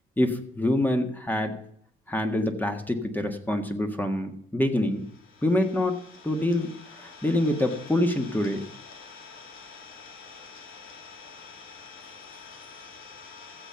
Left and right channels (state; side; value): normal; both; correlation 0.79